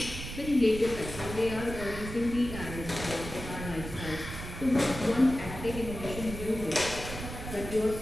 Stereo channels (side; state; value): right; noise; rumble, 9 dB below the sound